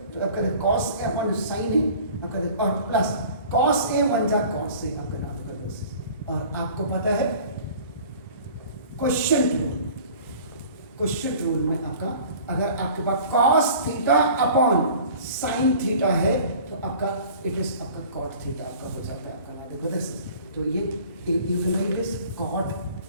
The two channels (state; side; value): inverted; both; correlation -0.46